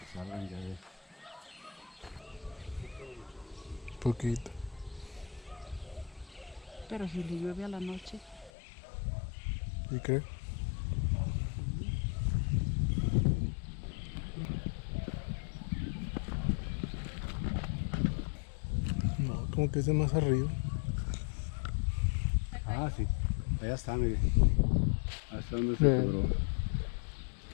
salgan ya de Poquito. Pero si le llueve a la noche. ¿Y qué? No, como que es de más arriba. Ah, sí. Allá está, mire. Hasta donde se Bien. quebró.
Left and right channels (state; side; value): drops out; right; at 8.5 s